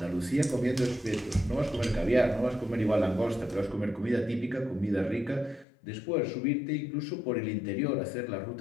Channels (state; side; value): drops out; right; at 5.7 s